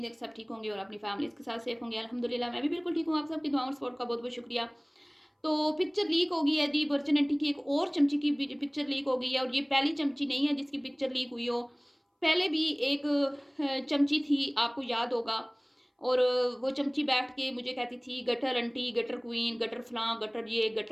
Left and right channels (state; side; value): identical; both; correlation 1.00